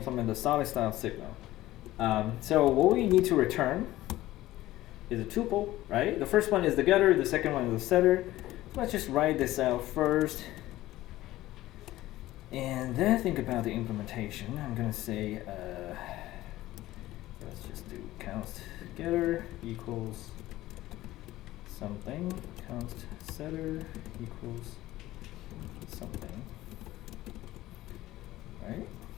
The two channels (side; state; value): right; quieter; 16.1 dB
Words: the solid style signal. So what we need to return is a tuple, right? The first one is the getter, the second one is the setter. So let's just write this out first. And then think about the implementation. I'm gonna say, let's just do const getter equals something, const setter equals something, right?